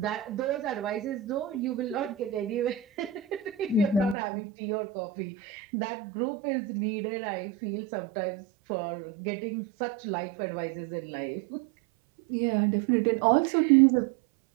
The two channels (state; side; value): drops out; left; at 4.2 s